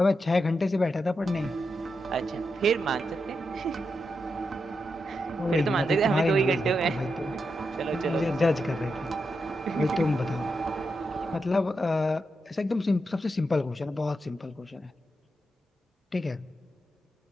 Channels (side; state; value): both; normal; correlation 0.86